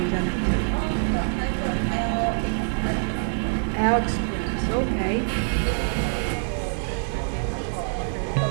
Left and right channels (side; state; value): left; silent; digital silence